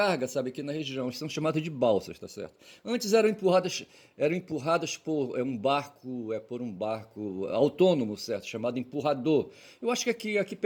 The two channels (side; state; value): both; identical; correlation 1.00